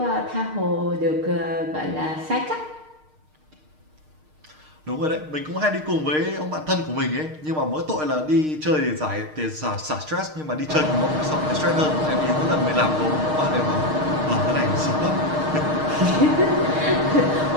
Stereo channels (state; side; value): late; left; 6.5 ms